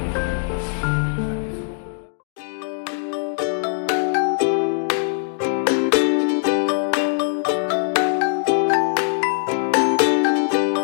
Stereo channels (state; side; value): silent; right; digital silence